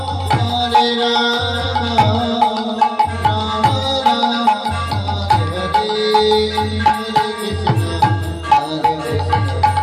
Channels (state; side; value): identical; both; correlation 1.00